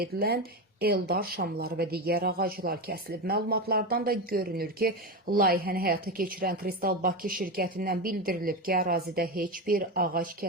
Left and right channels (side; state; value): both; normal; correlation 0.17